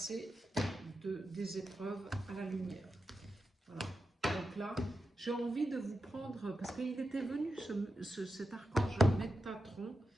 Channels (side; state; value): both; normal; correlation 0.88